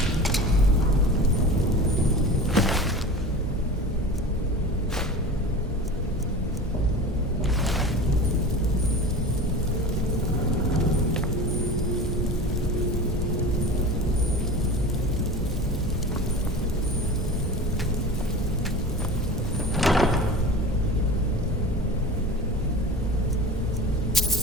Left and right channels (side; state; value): both; normal; correlation 0.33